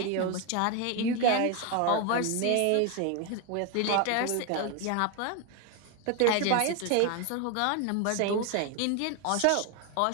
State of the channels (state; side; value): different; both; correlation 0.01